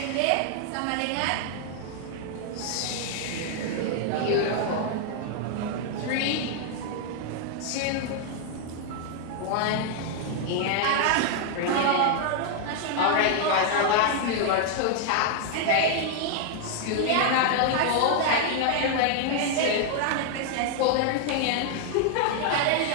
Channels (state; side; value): different; both; correlation 0.00